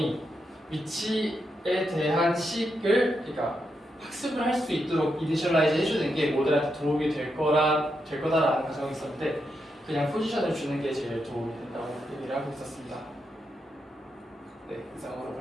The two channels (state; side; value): normal; both; correlation 0.84